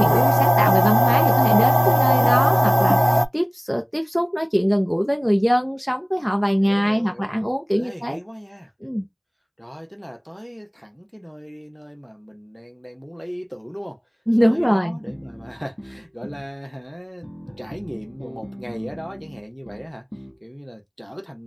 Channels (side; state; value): both; identical; correlation 1.00